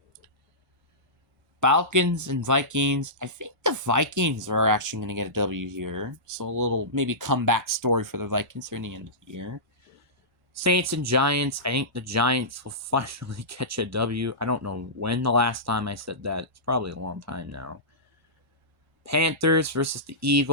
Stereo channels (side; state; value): both; normal; correlation -0.19